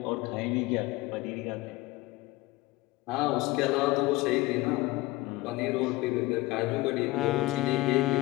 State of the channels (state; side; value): quieter; right; 20.2 dB